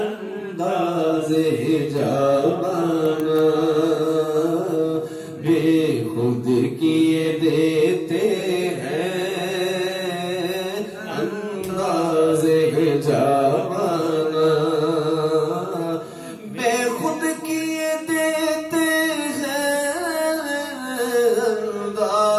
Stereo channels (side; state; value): both; identical; correlation 1.00